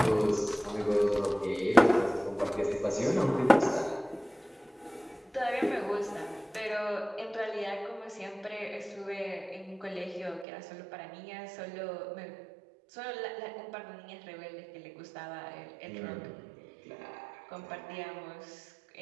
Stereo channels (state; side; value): drops out; left; at 10.5 s